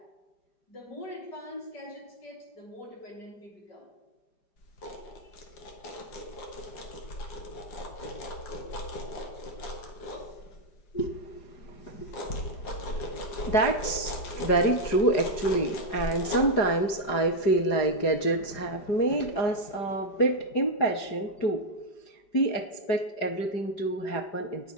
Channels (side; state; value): right; late; 4.8 ms